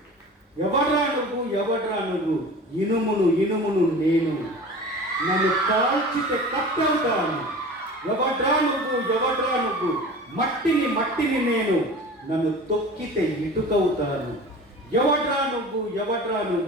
ఎవడ్రా నువ్వు, ఎవడ్రా నువ్వు? ఇనుమును ఇనుమును నేను, నన్ను కాల్చితే కట్టవుతాను. ఎవడ్రా నువ్వు, ఎవడ్రా నువ్వు? మట్టిని మట్టిని నేను, నన్ను తొక్కితే ఇటుకవుతాను. ఎవడ్రా నువ్వు, ఎవడ్రా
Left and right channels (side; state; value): both; normal; correlation 0.38